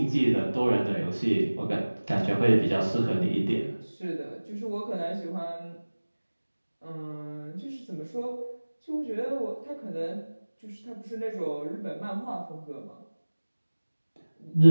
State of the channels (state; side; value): inverted; both; correlation -1.00